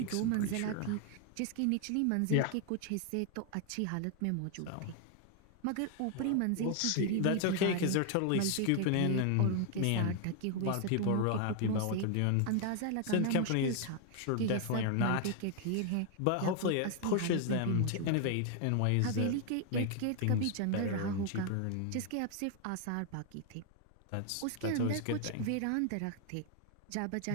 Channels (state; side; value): different; both; correlation 0.00